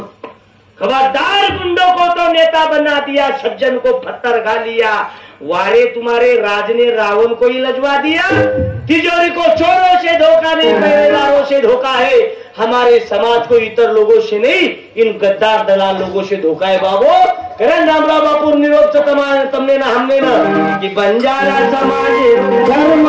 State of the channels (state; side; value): identical; both; correlation 1.00